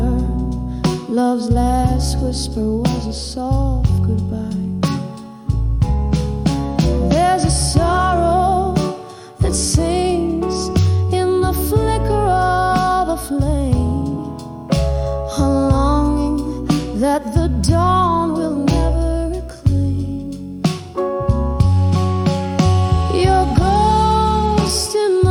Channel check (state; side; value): identical; both; correlation 1.00